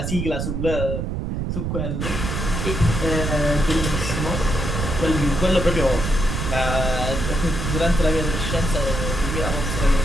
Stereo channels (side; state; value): right; noise; rumble, 2 dB below the sound